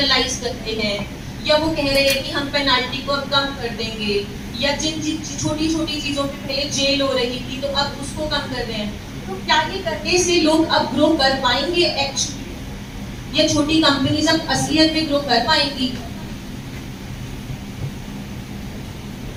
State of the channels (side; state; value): both; identical; correlation 1.00